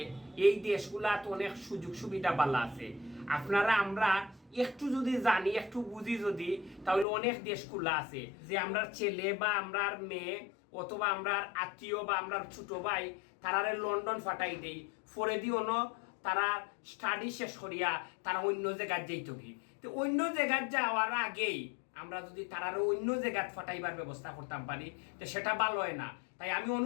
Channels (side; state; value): right; drops out; at 7.1 s